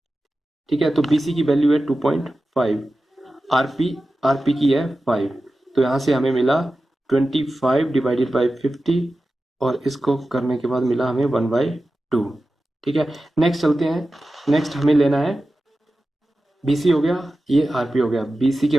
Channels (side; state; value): both; normal; correlation 0.94